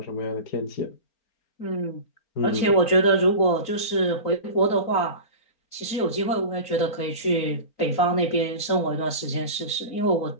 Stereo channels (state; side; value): late; right; 4.4 ms